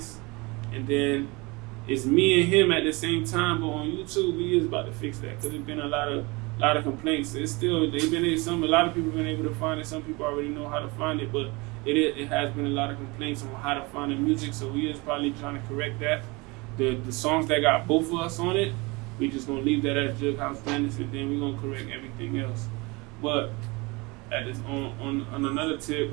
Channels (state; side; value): quieter; left; 25.8 dB